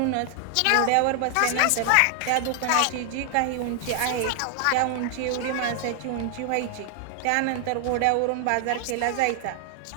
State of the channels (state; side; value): different; both; correlation 0.00